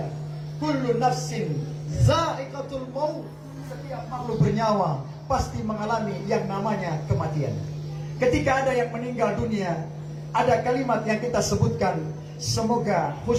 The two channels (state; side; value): identical; both; correlation 1.00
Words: kullu nafsin za'iqatul maut, setiap makhluk bernyawa pasti mengalami yang namanya kematian. Ketika ada yang meninggal dunia, ada kalimat yang kita sebutkan, semoga